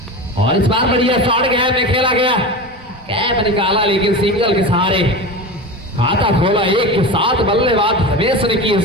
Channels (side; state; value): both; normal; correlation 0.27